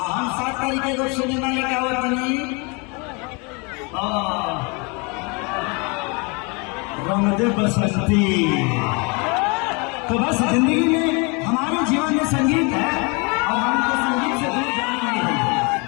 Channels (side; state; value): right; quieter; 30.6 dB